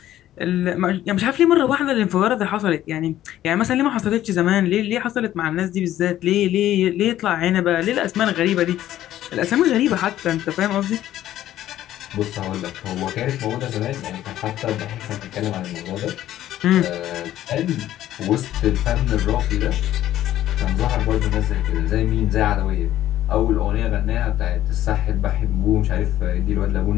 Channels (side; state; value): right; quieter; 13.0 dB